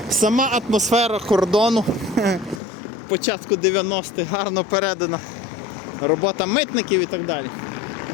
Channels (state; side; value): drops out; right; at 2.6 s